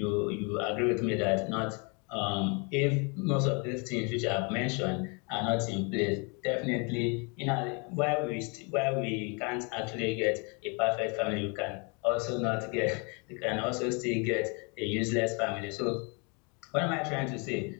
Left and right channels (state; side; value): quieter; right; 33.4 dB